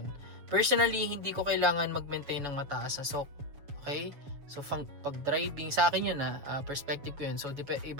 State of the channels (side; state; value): left; late; 7.2 ms